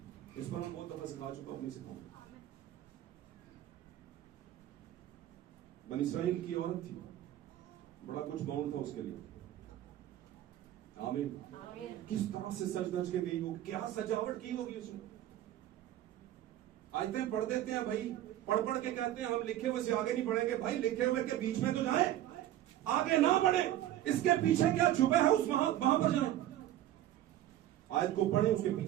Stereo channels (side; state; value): left; quieter; 13.0 dB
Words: इस पर हम बहुत दफा सिखा चुका, अपनी सिखाऊंगा। बनी इस्राइल की औरत थी, बड़ा कुछ बाउंड था उसके लिए। आमीन। किस तरह से सज धज के गई होगी, क्या सजावट की होगी उसने। आयतें पढ़ देते हैं भाई, पढ़ पढ़ के कहते हैं हम लिखे हुए से आगे नहीं बढ़ेंगे। भाई लिखे हुए के बीच में तो जाए, आगे ना बढ़े। इसके पीछे क्या छुपा है उस वहां पर जाए। आयत को पढ़े, उसके